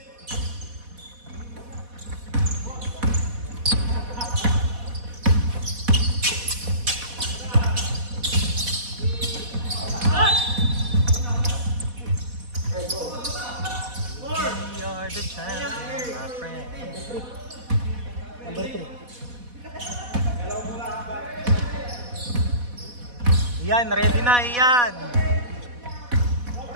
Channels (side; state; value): left; late; 4.1 ms